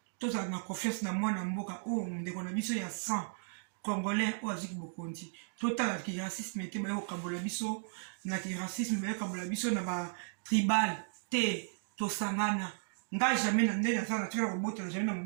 To za na confiance na mwana mboka o ndeko na biso ya 100 Congolais o aziki bokonti. Total ki racisme te ba yo kabola biso na ki racisme ba yo kabola biso na ba tribal te to sangana. Nga jamais na ndena za na tira robota na jamais na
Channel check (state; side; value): silent; left; digital silence